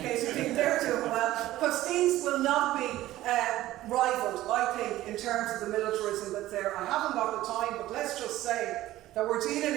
you think they're doing well, because things will not be rivaled, I think, in terms of the militarism that's there. I haven't got the time, but let's just say that we're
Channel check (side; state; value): left; quieter; 15.3 dB